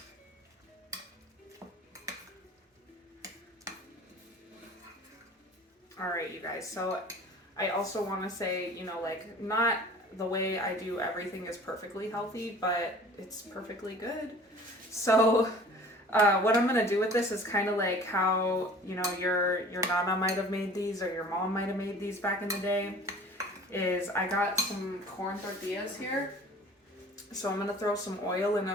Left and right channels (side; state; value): both; normal; correlation 0.46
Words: you guys. So I also want to say, you know, like, not the way I do everything is perfectly healthy, but it's perfectly good. So what I'm gonna do with this is kind of like how, you know, your nana might have made these or your mom might have made these back in the day. Is I got some corn tortillas here, so I'm gonna throw some oil in